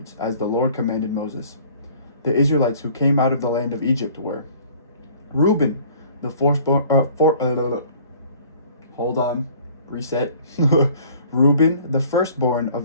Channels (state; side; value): inverted; both; correlation -0.53